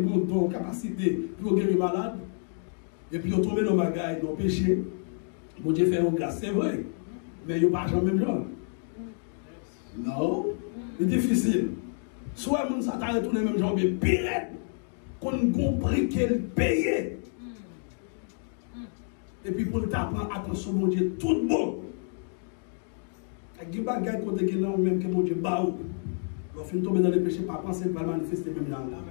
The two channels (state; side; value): silent; right; 59 dB below the other